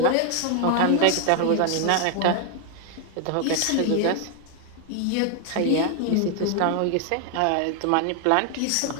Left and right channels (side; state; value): both; different; correlation 0.00